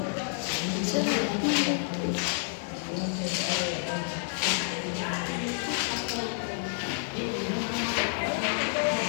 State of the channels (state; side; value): silent; right; 58 dB below the other